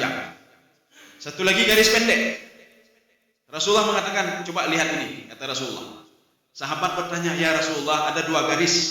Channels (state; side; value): identical; both; correlation 1.00